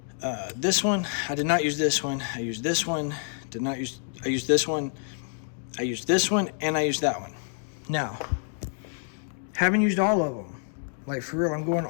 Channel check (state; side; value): silent; right; 59 dB below the other